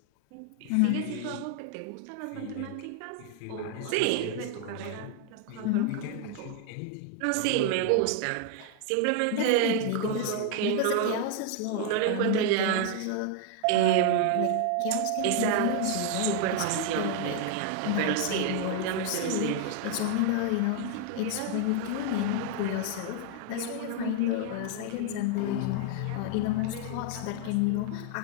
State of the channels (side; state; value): both; different; correlation 0.00